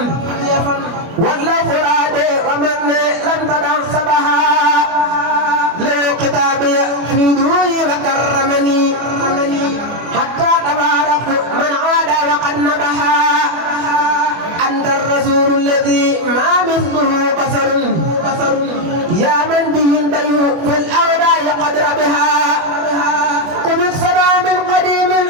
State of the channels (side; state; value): left; late; 24 ms